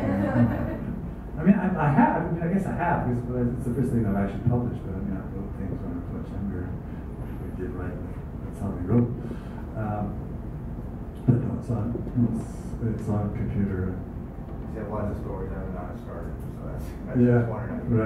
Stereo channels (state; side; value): identical; both; correlation 1.00